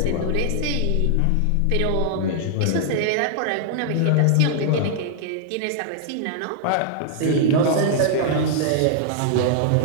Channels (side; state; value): both; different; correlation -0.01